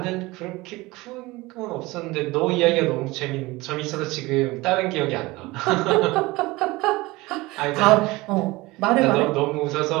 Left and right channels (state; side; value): quieter; left; 21.2 dB